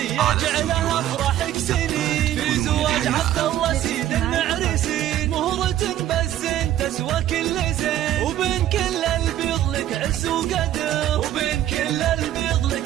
يجعلها افراحك سنين، في زواج عبد الله سيد المعرسين. مهرة بالزين تسوى كل زين، وبين كل البيض لك عز وقدر، وبين كل البيض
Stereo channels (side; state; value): left; quieter; 12.4 dB